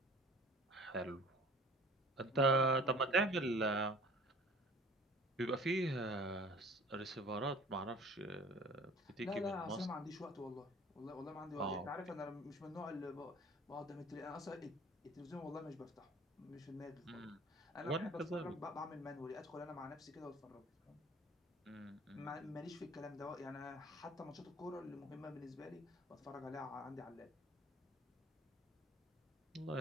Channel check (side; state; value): both; normal; correlation 0.47